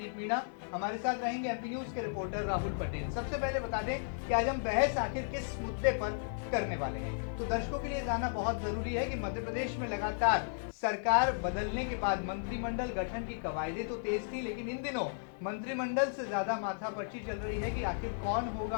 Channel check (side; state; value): right; silent; 55 dB below the other